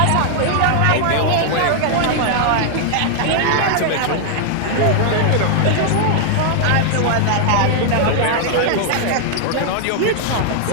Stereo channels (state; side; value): different; both; correlation -0.01